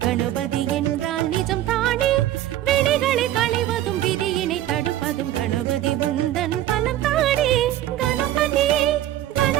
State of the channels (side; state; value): left; quieter; 13.3 dB